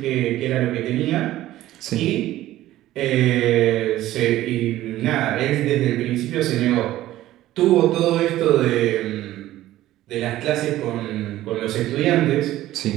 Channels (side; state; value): left; quieter; 14.8 dB